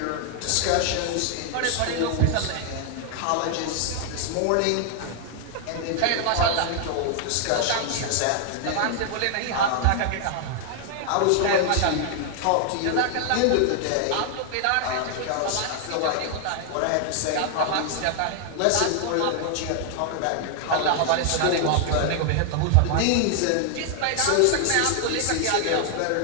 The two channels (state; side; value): different; both; correlation 0.00